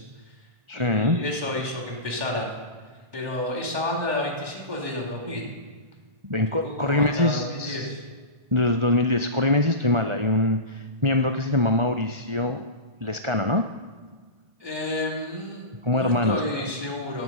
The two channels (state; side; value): late; left; 1.2 ms